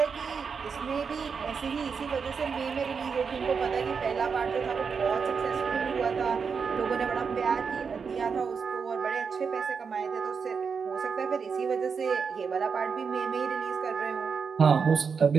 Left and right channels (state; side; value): quieter; left; 5.8 dB